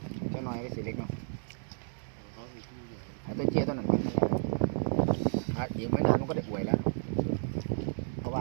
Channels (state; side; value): silent; left; digital silence